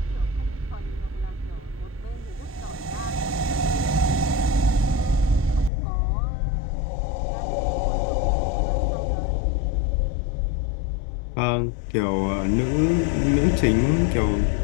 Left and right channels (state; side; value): drops out; right; at 5.7 s